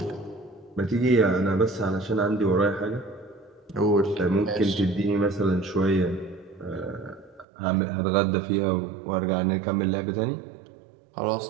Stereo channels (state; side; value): drops out; left; at 7.5 s